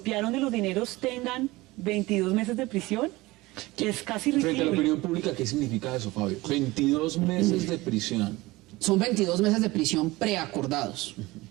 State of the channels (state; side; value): quieter; left; 20.4 dB